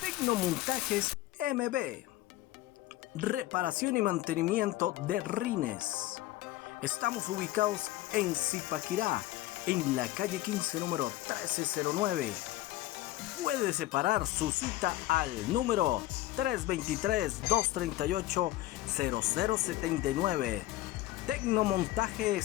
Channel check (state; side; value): quieter; right; 16.1 dB